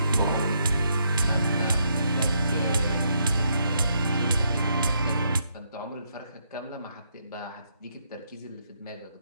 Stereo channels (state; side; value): inverted; both; correlation -0.76